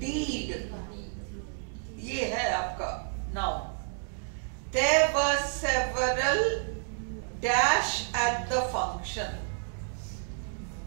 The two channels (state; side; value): silent; left; 58 dB below the other